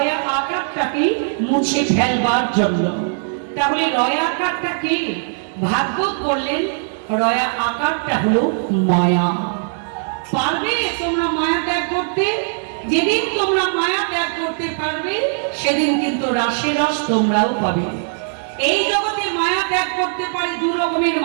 আকারটাকে মুছে ফেলবার জন্য। তাহলে রয়া আকারটা কি? ভাগবত বললেন রয়া আকারটা হলো মায়া। পারবে তোমরা মায়া ত্যাগ করতে? যেদিন তোমরা মায়া ত্যাগ করতে পারবে সেদিন কিন্তু রাসের রস তোমরাও পাবে। এই জগতে মায়া ত্যাগ করতে পারে দু রকমের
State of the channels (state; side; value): silent; left; 66 dB below the other